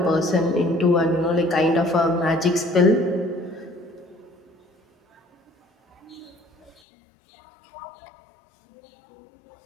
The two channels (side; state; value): right; drops out; at 6.8 s